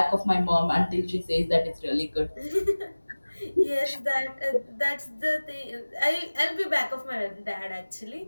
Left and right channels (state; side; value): inverted; both; correlation -1.00